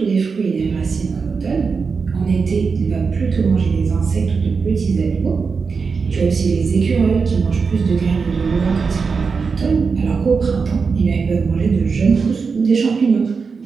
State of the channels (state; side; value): quieter; left; 5.1 dB